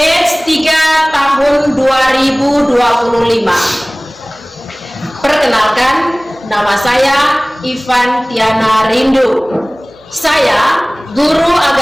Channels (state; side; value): noise; right; hum, 30 dB below the sound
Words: 3 tahun 2025. Perkenalkan, nama saya Ivan Tiana Rindu. Saya guru